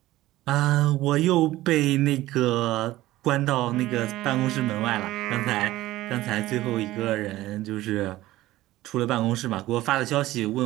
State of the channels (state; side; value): quieter; left; 16.5 dB